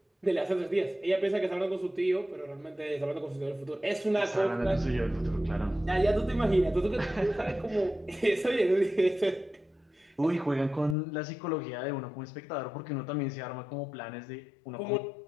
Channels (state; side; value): drops out; right; at 11.0 s